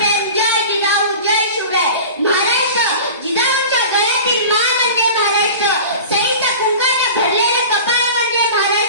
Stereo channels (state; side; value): inverted; both; correlation -0.36